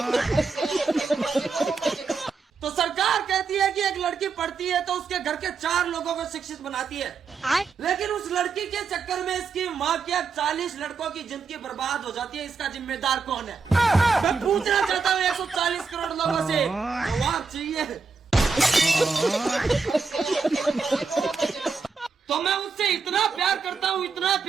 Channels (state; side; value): quieter; left; 4.9 dB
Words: तो सरकार कहती है कि एक लड़की पढ़ती है तो उसके घर के 4 लोगों को शिक्षित बनाती है, लेकिन उस लड़की के चक्कर में इसकी माँ के 40 लड़कों की जिंदगी बर्बाद हो जाती है। इसका जिम्मेदार कौन है? मैं पूछना चाहता हूँ 140 करोड़ लोगों से जवाब चाहिए। तो मैं उससे इतना प्यार करता हूँ, इतना